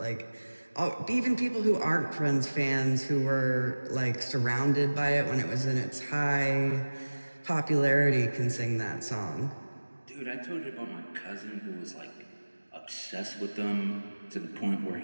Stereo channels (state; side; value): inverted; both; correlation -1.00